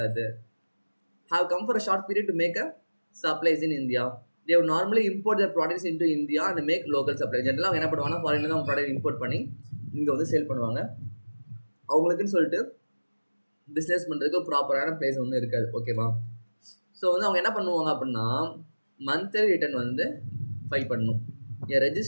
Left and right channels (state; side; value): inverted; both; correlation -1.00